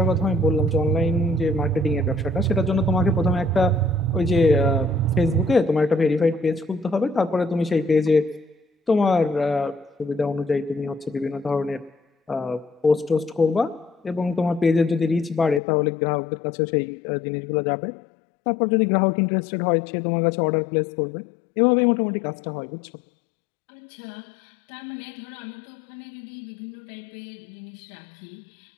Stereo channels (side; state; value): right; drops out; at 15.6 s